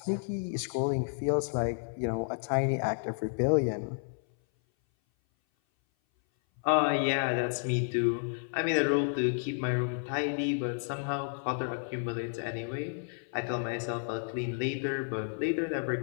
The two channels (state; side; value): silent; right; 57 dB below the other